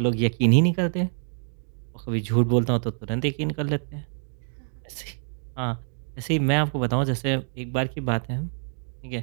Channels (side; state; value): left; silent; 61 dB below the other